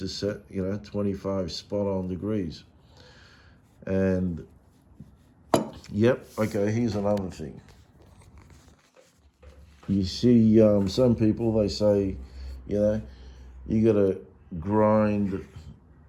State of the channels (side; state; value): both; identical; correlation 1.00